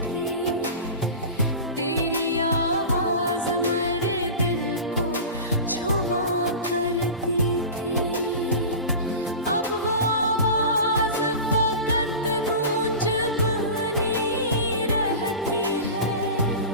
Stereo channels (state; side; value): inverted; both; correlation -0.31